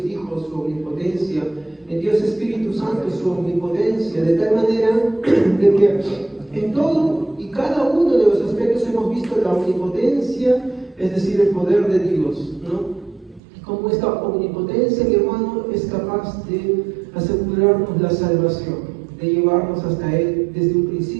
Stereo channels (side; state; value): left; drops out; at 13.4 s